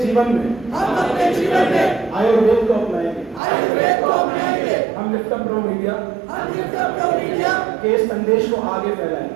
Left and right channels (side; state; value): left; drops out; at 3.4 s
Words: जीवन में आयुर्वेद को अपनाएंगे। हम लिफ्ट अप प्रो मीडिया के संदेश को आगे